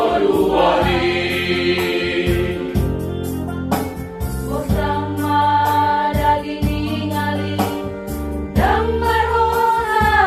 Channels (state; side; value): identical; both; correlation 1.00